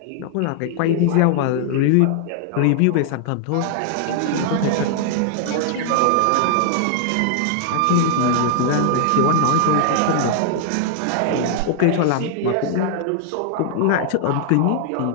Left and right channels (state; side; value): different; both; correlation 0.00